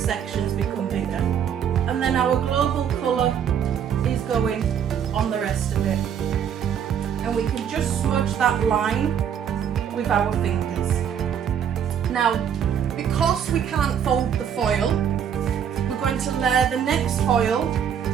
become bigger. and then our global colour is going on the rest of it. And we can just smudge that line with our fingers. Now, because we can't fold the foil, we're going to layer the next foil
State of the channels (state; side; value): quieter; left; 8.5 dB